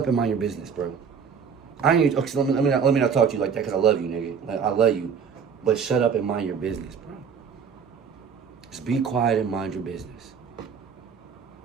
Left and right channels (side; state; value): left; quieter; 6.6 dB